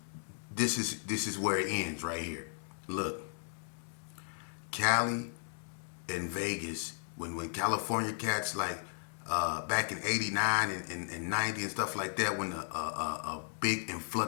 this is where it ends right here. Look, Cali and Vegas, when California cats like back in '89 and '90 and stuff like that, when a big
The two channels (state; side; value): silent; right; digital silence